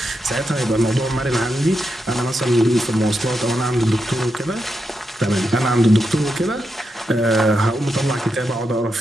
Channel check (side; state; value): both; normal; correlation 0.85